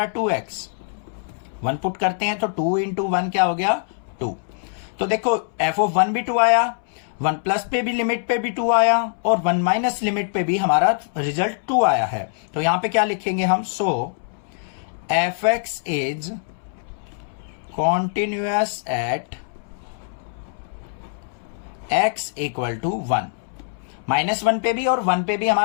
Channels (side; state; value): right; silent; 63 dB below the other